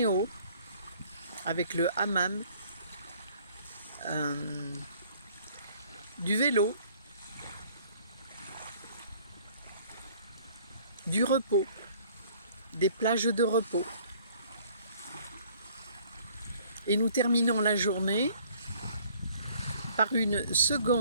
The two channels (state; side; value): inverted; both; correlation -0.56